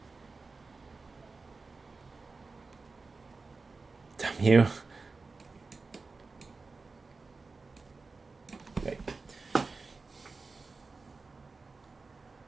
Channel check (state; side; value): quieter; left; 4.0 dB